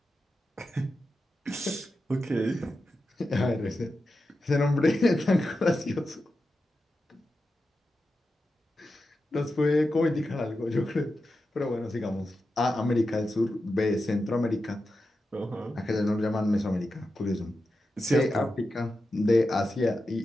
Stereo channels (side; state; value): both; normal; correlation 0.90